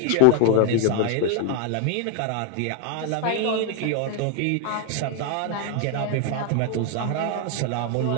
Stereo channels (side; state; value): both; different; correlation 0.01